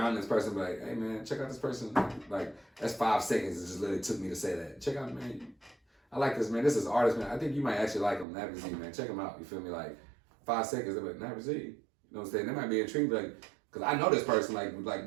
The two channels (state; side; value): drops out; left; at 8.2 s